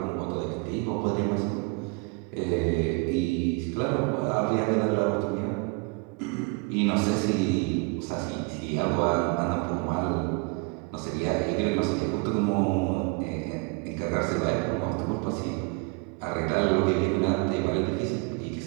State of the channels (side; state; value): left; quieter; 31.0 dB